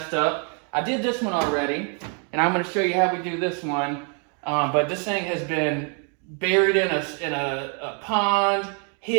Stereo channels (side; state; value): left; quieter; 39.9 dB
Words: up. I did this one already, and I'm going to show you how we do this one. But this thing has been buried in a pond,